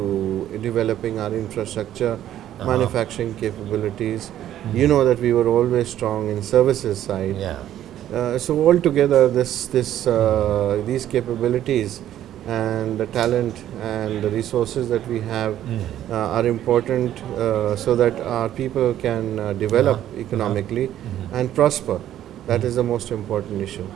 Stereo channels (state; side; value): quieter; left; 11.9 dB